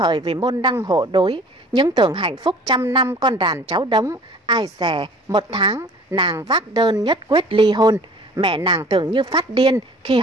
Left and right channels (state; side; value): normal; both; correlation 0.48